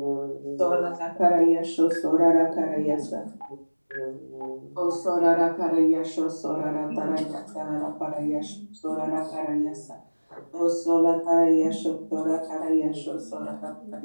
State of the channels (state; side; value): inverted; both; correlation -1.00